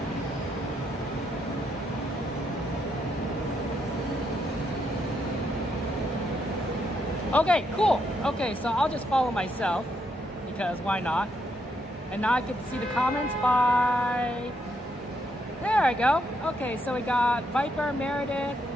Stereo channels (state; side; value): normal; both; correlation 0.77